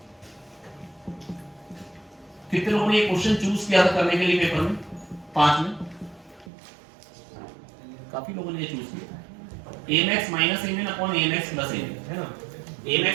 कितने लोगों ने ये क्वेश्चन चूज किया था करने के लिए पेपर में? 5 में काफी लोगों ने ये चूज किया। Amax minus Amin upon Amax plus Amin, है ना। Amax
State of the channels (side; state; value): left; drops out; at 6.5 s